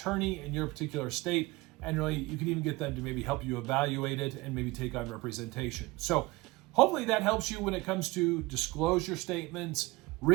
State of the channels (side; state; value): left; quieter; 21.7 dB